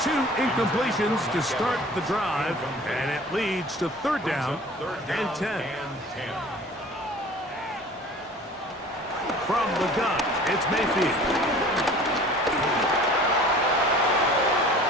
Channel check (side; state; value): both; normal; correlation 0.46